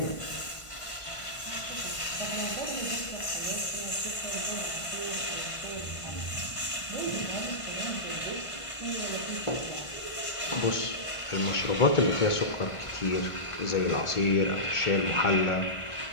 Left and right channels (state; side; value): late; right; 1.4 ms